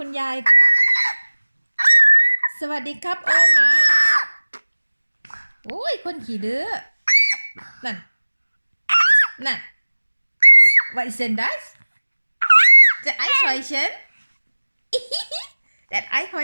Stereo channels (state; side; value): inverted; both; correlation -1.00